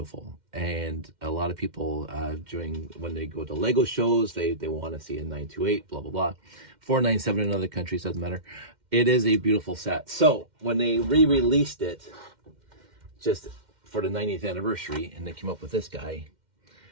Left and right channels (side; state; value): left; late; 2.1 ms